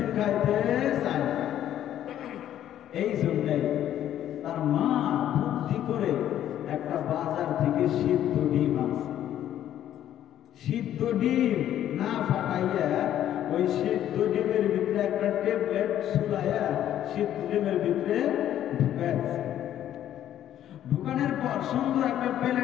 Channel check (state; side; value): quieter; right; 11.4 dB